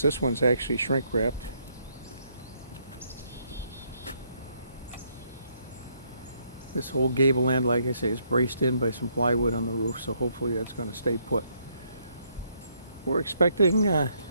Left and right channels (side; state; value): both; inverted; correlation -0.72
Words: This one's actually shrink wrapped. This whole gable end, like I say, is braced in by some plywood on the roof, so hopefully that's going to stay put. We're expecting